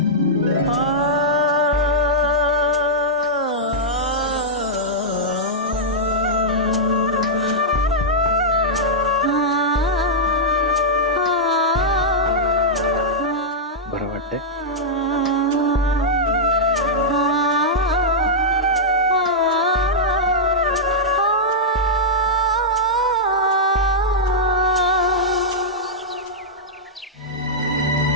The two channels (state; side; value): normal; both; correlation -0.08